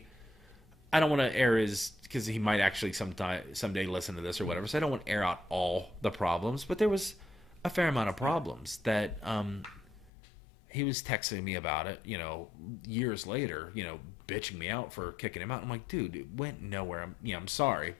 I don't want to air his because he might actually someday listen to this or whatever. So I don't want to air out all the problems, but there was a fair amount of problems that he was texting me about it. Years later, bitching me out for kicking him out. I'm like, dude, it went nowhere. I'm sorry,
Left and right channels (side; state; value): right; drops out; at 10.1 s